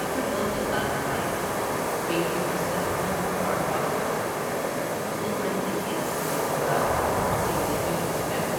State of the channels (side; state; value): both; identical; correlation 1.00